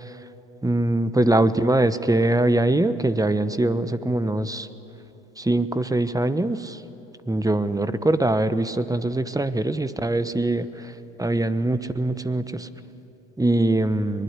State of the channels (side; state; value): both; normal; correlation 0.85